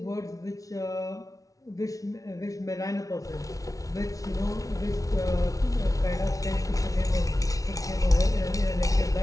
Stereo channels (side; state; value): right; late; 0.17 ms